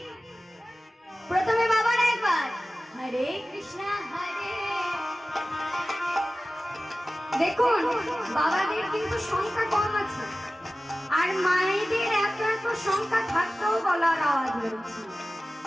প্রথমে বাবার একবার হরে কৃষ্ণ হরে। দেখুন বাবাদের কিন্তু সংখ্যা কম আছে, আর মায়েদের এত এত সংখ্যা থাকতেও গলার আওয়াজ বেরোচ্ছে।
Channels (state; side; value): normal; both; correlation 0.96